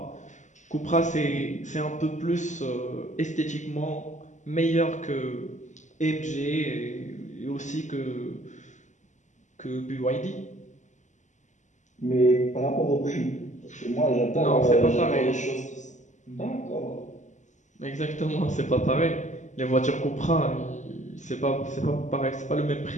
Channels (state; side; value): late; right; 0.35 ms